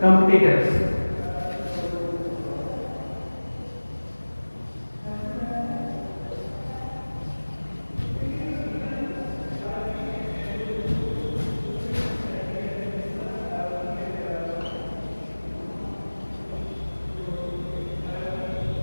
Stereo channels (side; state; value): both; inverted; correlation -1.00